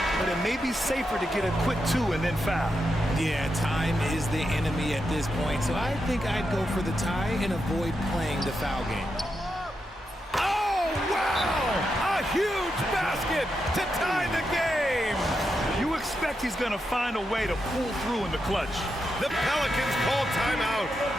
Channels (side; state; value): both; normal; correlation 0.85